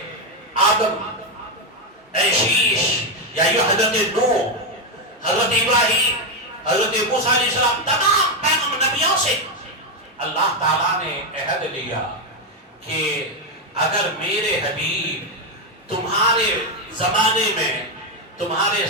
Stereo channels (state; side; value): normal; both; correlation 0.06